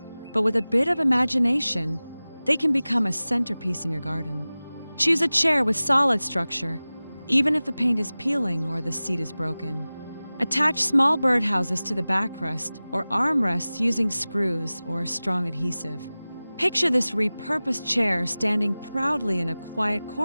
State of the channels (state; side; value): inverted; both; correlation -0.98